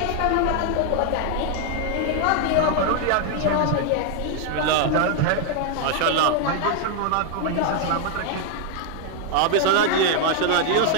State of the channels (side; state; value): both; different; correlation 0.00